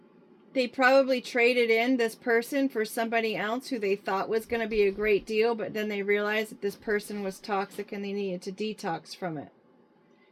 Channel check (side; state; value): both; identical; correlation 1.00